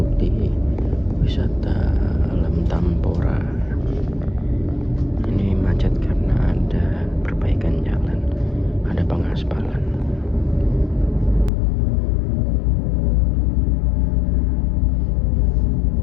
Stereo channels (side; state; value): right; drops out; at 11.5 s